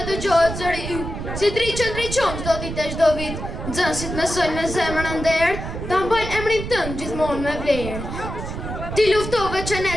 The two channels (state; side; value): noise; right; rumble, 7 dB below the sound